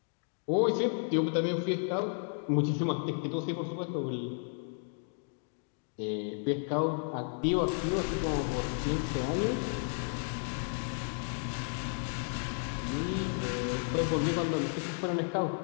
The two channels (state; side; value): silent; right; 56 dB below the other